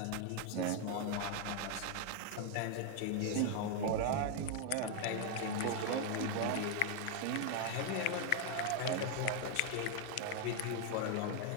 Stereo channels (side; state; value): both; different; correlation 0.01